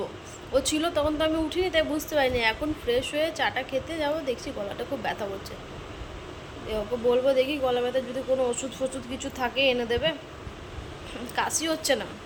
ও ছিল তখন তো আমি উঠিনি, তাই বুঝতে পারিনি। এখন ফ্রেশ হয়ে চাটা খেতে যাবো, দেখছি গলাটা খুব ব্যথা করছে। ওকে বলবো, দেখি গলা ব্যথা যদি কোনো ওষুধ ফষুধ কিছু থাকে এনে দেবে। কাশি হচ্ছে না,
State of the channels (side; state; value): both; identical; correlation 1.00